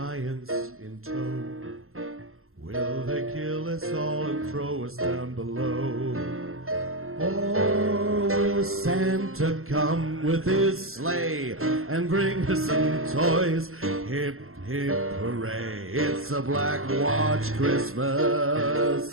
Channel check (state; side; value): late; left; 0.62 ms